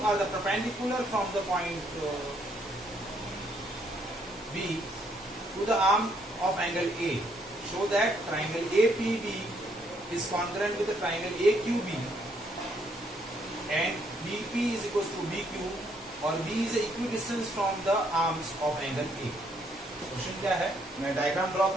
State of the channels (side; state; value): both; normal; correlation 0.70